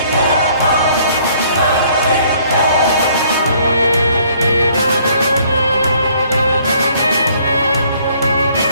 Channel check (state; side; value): inverted; both; correlation -0.62